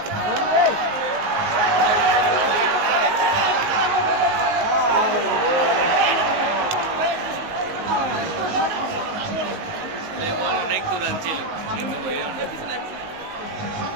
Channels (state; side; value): late; left; 19 ms